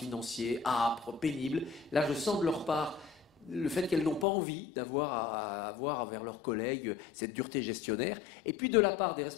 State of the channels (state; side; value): drops out; right; at 4.2 s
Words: âpres, pénibles. Là, je sens de leur part le fait qu'elles n'ont pas envie d'avoir à avoir envers leurs collègues cette dureté gestionnaire. Et puis de la part des